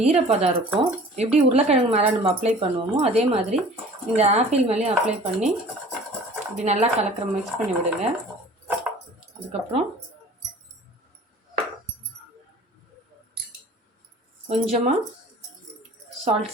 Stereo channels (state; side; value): normal; both; correlation 0.46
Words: ஈரப்பதம் இருக்கும். எப்படி உருளைக்கிழங்கு மேலே நம்ம அப்ளை பண்ணுவோமோ அதே மாதிரி இந்த ஆப்பிள் மேலேயும் அப்ளை பண்ணி இப்படி நல்லா மிக்ஸ் பண்ணி விடுங்க. அதுக்கப்புறம் கொஞ்சமாக